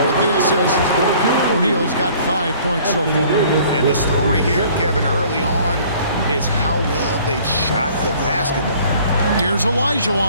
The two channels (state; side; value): inverted; both; correlation -0.54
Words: with the assist. O'Neal's got 5 points so far. And the story here, Kevin, early on is how well they've shot the basketball. Here's